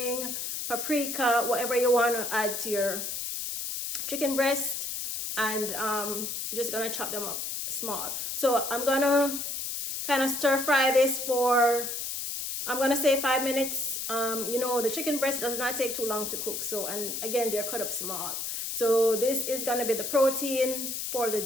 paprika, whatever you want to add to your chicken breast. And you're just gonna chop them up small. So I'm gonna kind of stir fry this for, I'm gonna say 5 minutes. The chicken breast does not take too long to cook. So, and again, they're cut up small. So this is gonna be the protein for the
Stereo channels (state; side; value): noise; left; hiss, 4 dB below the sound